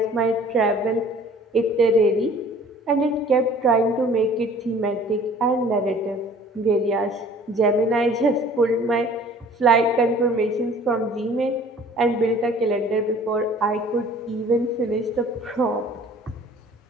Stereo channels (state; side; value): normal; both; correlation 0.50